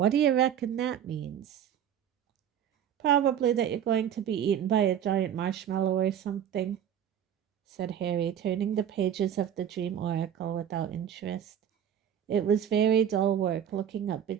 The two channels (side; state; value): left; quieter; 9.4 dB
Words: do you reckon that means?" "Probably that you're going to be eaten by a giant marshmallow or something," said Harry, turning the pages of the dream oracle without interest. It was very dull work looking up